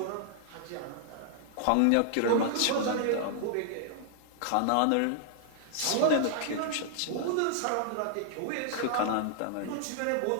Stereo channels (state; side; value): different; both; correlation 0.00